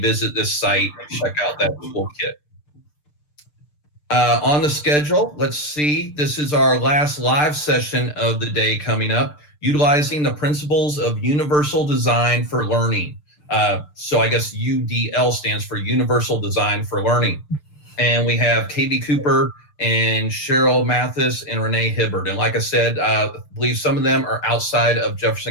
this site and check out that toolkit. On the schedule, let's see, this is our last live session of the day coming up, utilizing the principles of universal design for learning. So I guess UDL stands for Universal Design for Learning. And we have Katie Cooper and Cheryl Mathis and Renee Hibbert. And like I said, I believe some of them are outside of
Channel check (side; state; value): right; late; 6.7 ms